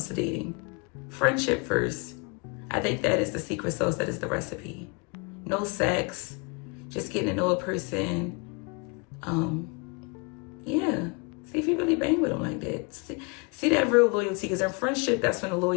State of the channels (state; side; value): quieter; right; 32.2 dB